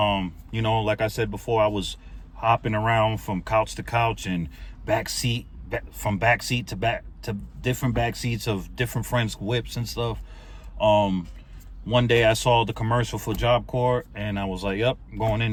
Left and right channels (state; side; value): identical; both; correlation 1.00